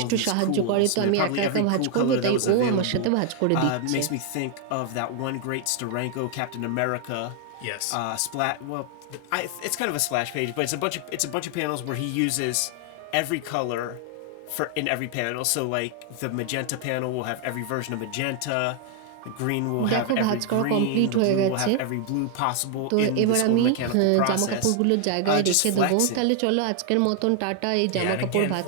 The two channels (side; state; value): both; different; correlation 0.00